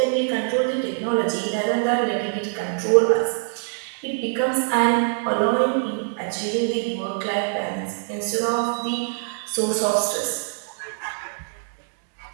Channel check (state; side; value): silent; left; digital silence